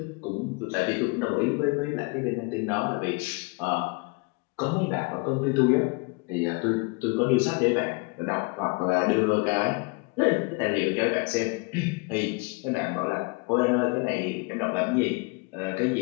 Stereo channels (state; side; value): quieter; right; 29.8 dB